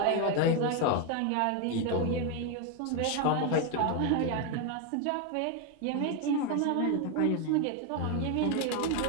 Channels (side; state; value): both; different; correlation 0.02